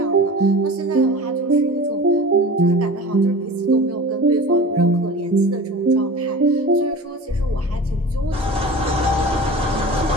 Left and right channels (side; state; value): both; normal; correlation 0.35